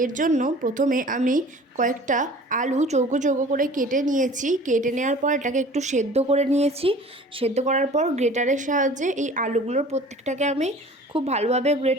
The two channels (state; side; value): normal; both; correlation 0.45